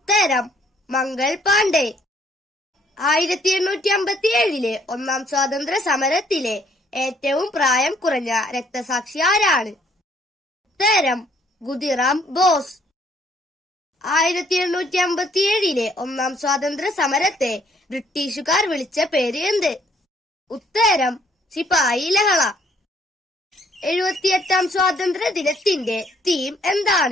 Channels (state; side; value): normal; both; correlation 0.65